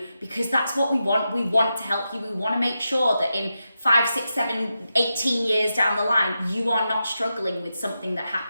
because that's what we want. We want to help you. We want to make sure that in 5, 6, 7, 18 years down the line, you are not struggling with something that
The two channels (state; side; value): inverted; both; correlation -0.88